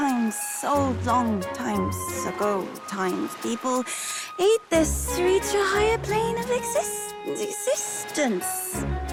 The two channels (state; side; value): identical; both; correlation 1.00